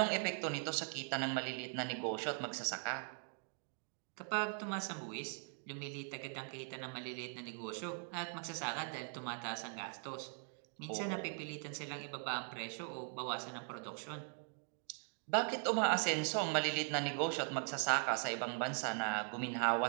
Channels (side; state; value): left; silent; 51 dB below the other